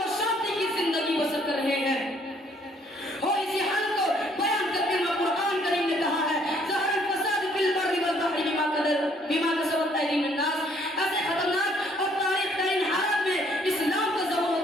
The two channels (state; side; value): normal; both; correlation 0.64